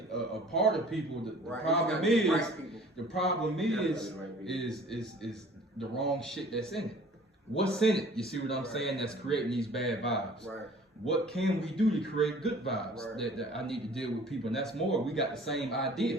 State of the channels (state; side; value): normal; both; correlation 0.50